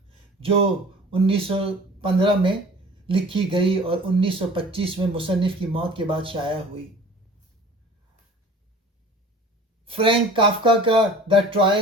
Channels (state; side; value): normal; both; correlation 0.44